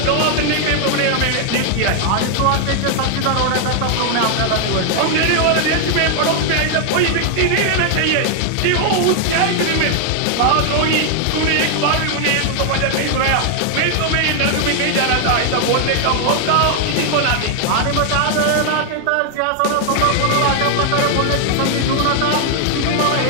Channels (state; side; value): different; both; correlation 0.00